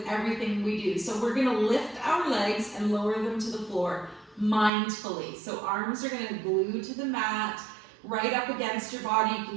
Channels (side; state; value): left; drops out; at 4.7 s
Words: everything we do. So we're going to lift our legs and lower them to the floor mindfully. So arms are going to glue to the mat, right up against your body. You